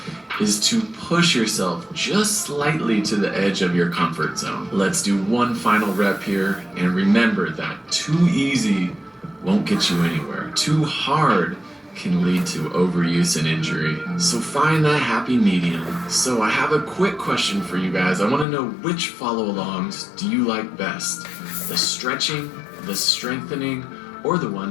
is to push yourself just slightly to the edge of your comfort zone. Let's do one final rep here, and remember that too easy won't get you anywhere. Too hard can lead to overuse and injury. So find that happy medium. So I have a quick question for you guys. I want to know, which follow-alongs do you like best? The stretching, the strengthening, or the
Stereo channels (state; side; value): drops out; right; at 18.4 s